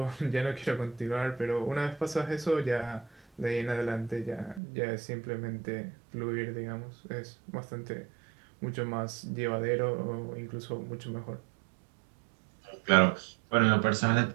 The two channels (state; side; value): drops out; left; at 4.6 s